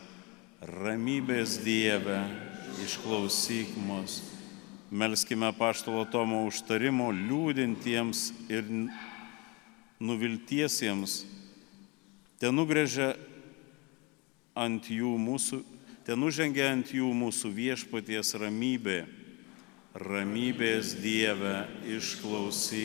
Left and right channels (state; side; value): quieter; right; 28.0 dB